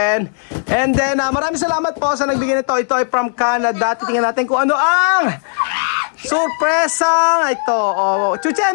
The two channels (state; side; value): silent; right; 69 dB below the other